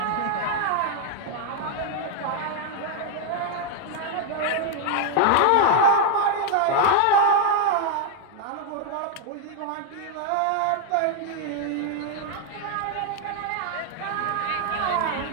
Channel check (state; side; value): different; both; correlation 0.00